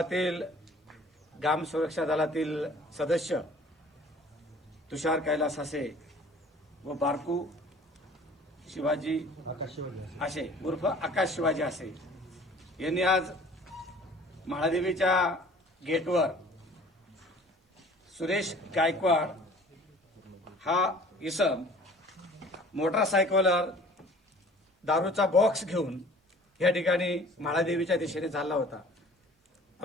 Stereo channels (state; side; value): normal; both; correlation 0.49